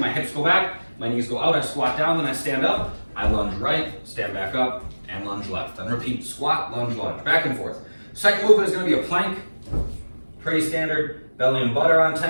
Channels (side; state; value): both; inverted; correlation -1.00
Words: hips go back, my knees go out, I squat down, then I stand up, I lunge right, stand back up, and lunge left. Then repeat, squat, lunge, back and forth. Second movement is gonna be a plank, pretty standard, belly and butt are on